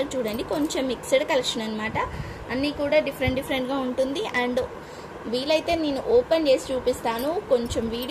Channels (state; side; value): identical; both; correlation 1.00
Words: చూడండి. కొంచెం మిక్స్డ్ కలెక్షన్ అనమాట. అన్నీ కూడా డిఫరెంట్గా ఉంటుంది. అండ్ వీలైతే నేను ఓపెన్ చేసి చూపిస్తాను. కొంచెం